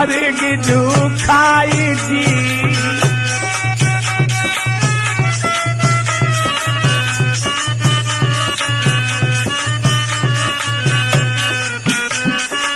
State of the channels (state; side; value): identical; both; correlation 1.00